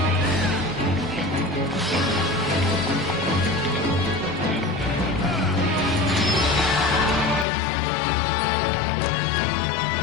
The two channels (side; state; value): right; drops out; at 7.5 s